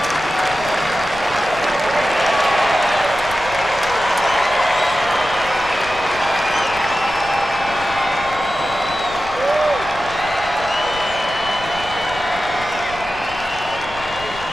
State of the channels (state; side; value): noise; left; rumble, 16 dB below the sound